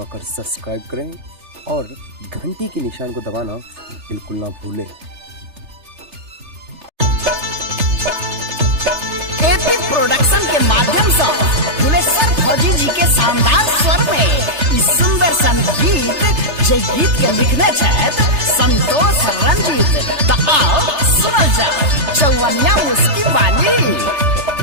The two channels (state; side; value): late; left; 3.3 ms